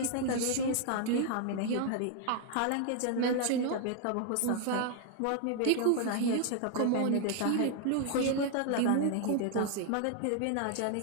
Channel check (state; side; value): different; both; correlation 0.00